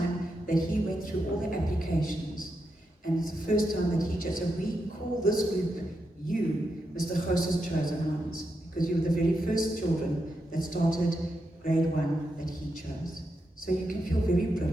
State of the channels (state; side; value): normal; both; correlation 0.85